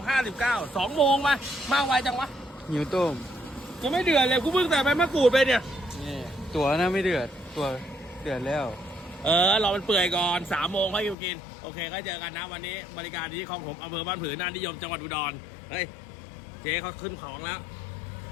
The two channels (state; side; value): drops out; right; at 11.2 s